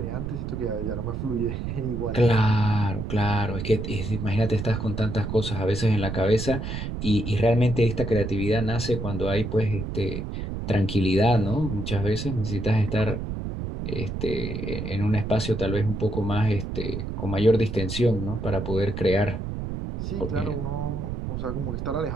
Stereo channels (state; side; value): noise; right; rumble, 5 dB below the sound